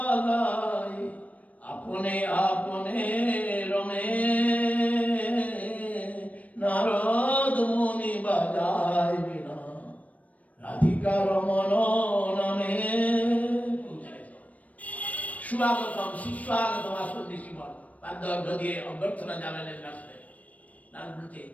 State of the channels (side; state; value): right; late; 0.069 ms